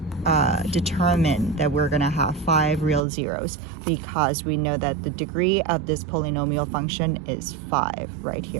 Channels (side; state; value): left; drops out; at 3.0 s